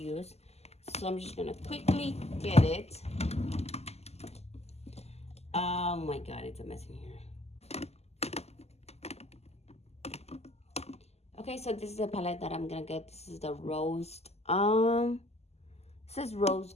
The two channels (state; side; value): late; right; 0.30 ms